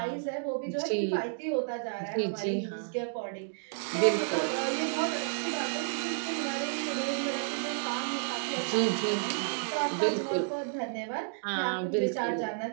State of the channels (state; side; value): silent; left; digital silence